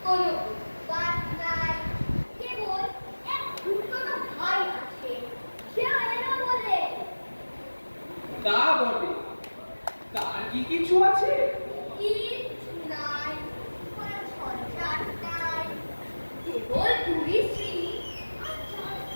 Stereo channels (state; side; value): inverted; both; correlation -1.00